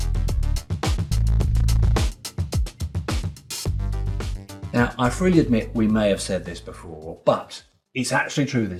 Now, I freely admit we may have said this before, but it's actually true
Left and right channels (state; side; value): identical; both; correlation 1.00